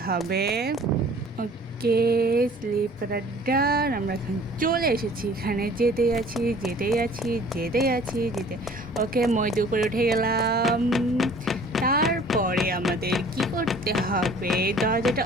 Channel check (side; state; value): both; normal; correlation 0.51